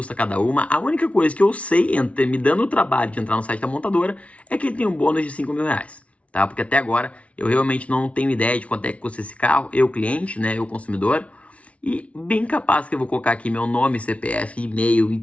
cada uma. A única coisa que eu sei, me dando o trabalho de entrar no site da montadora, é que ele tem um bônus de R$5.000, tá? Porque até agora eu realmente não tenho ideia de quanto é que custa esse carro, eu cliente, né, eu consumidor, e bem capaz que eu vou colocar aqui meu nome, CPF, e-mail e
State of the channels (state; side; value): late; right; 0.064 ms